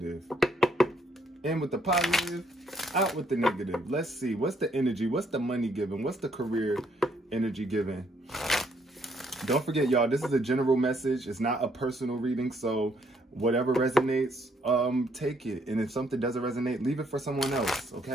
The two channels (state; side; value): normal; both; correlation 0.69